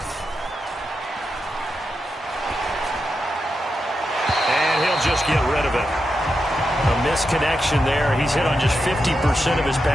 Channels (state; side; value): normal; both; correlation 0.87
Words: And he'll just get rid of it. A misconnection there. He's hit on just 50% of his